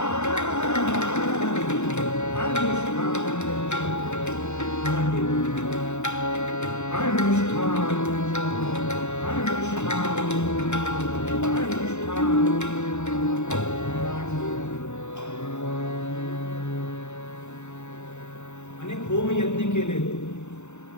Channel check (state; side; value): late; right; 0.83 ms